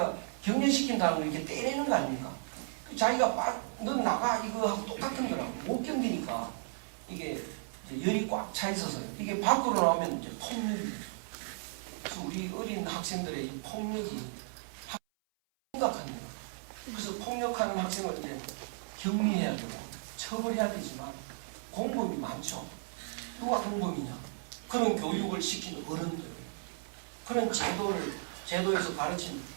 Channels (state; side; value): silent; left; 55 dB below the other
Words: 경쟁시킨다는 걸 이렇게 때리는 거 아닙니까? 자기가 넌 나가 이거 하고 똑같은 거라고 못 견디니까 이게 열이 꽉 차 있어서 이게 밖으로 나오면 이제 폭력이. 그래서 우리 어린 학생들의 이 폭력이 심각합니다. 그래서 폭력하는 학생을 이제 격리해야 되고 처벌해야 되지만 공범이 많죠. 누가 공범이냐? 그런 교육을 시킨 어른들, 그런 제도에서 가르친